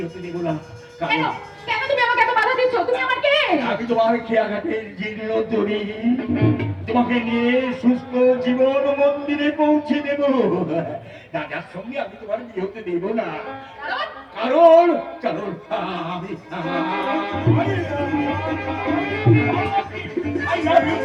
হতে দেব না। কেন কেন তুমি আমাকে এত বাধা দিচ্ছ? তুমি আমার কে? আমি তোমার খেয়াঘাটের জীর্ণ তরি, তোমাকে নিয়ে সুস্থ জীবন মন্দিরে পৌঁছে দেব। রাজার সঙ্গে আমি তোমার বিয়ে হতে দেব না। কারণ কারণ আমি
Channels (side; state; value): both; identical; correlation 1.00